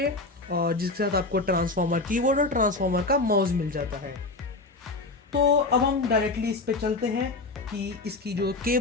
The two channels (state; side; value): quieter; right; 3.3 dB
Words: और जिसके साथ आपको ट्रांसफॉर्मर कीबोर्ड और ट्रांसफॉर्मर का माउस मिल जाता है। तो अब हम डायरेक्टली इस पे चलते हैं कि इसकी जो